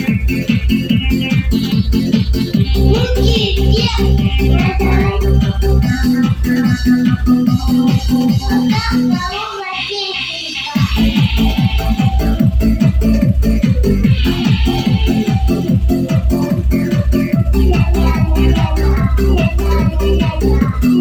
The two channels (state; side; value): identical; both; correlation 1.00